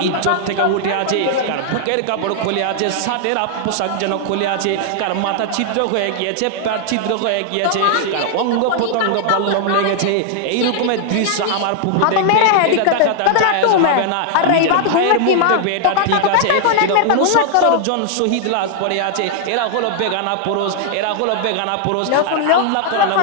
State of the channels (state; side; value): different; both; correlation 0.00